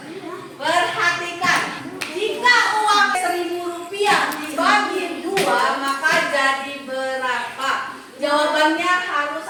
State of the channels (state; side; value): identical; both; correlation 1.00